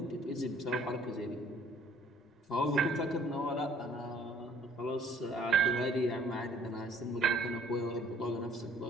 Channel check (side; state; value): both; normal; correlation 0.59